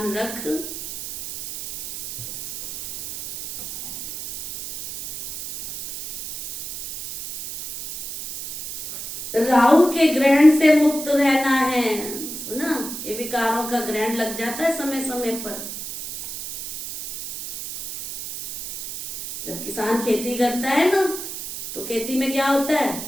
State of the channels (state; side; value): noise; right; hiss, 8 dB below the sound